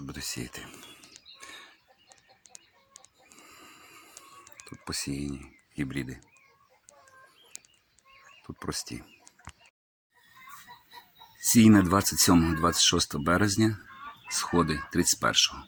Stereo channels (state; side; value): identical; both; correlation 1.00